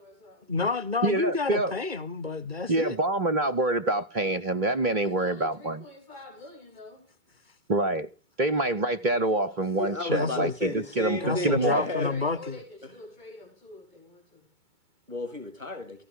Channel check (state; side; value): late; left; 2.2 ms